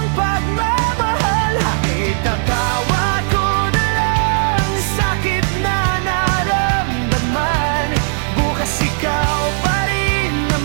pagmamahal. Itatawa ko na lang sakit na naramdaman. Bukas ikaw pa rin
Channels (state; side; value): silent; left; 61 dB below the other